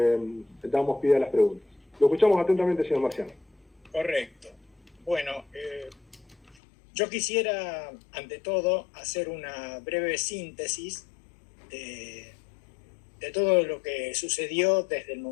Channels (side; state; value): right; drops out; at 6.6 s